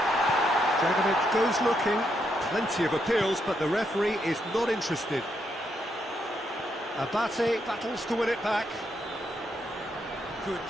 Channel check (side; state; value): both; normal; correlation 0.78